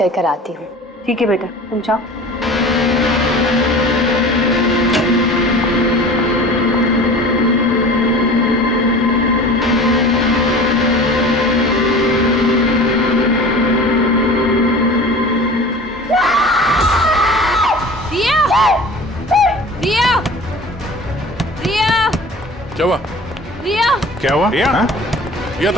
आती हूँ। ठीक है बेटा, तुम जाओ। क्या हुआ? रिया, क्या हुआ? रिया, रिया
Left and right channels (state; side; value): normal; both; correlation 0.40